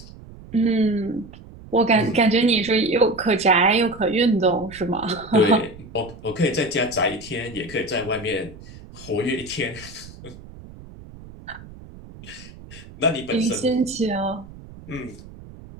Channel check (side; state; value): right; noise; rumble, 18 dB below the sound